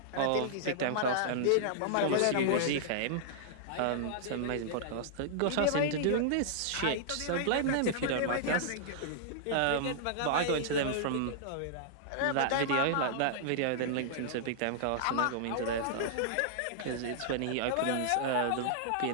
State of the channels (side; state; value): both; different; correlation -0.01